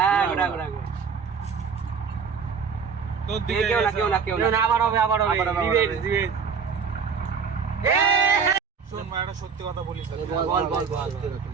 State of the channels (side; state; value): left; quieter; 6.0 dB